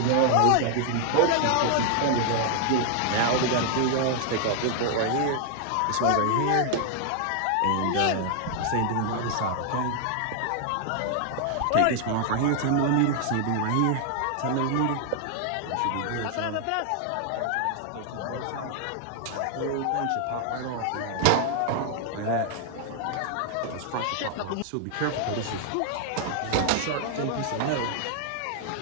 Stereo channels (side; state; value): both; different; correlation 0.00